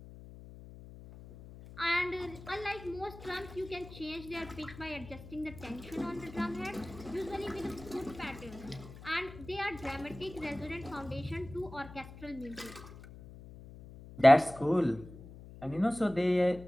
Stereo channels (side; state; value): left; noise; hum, 16 dB below the sound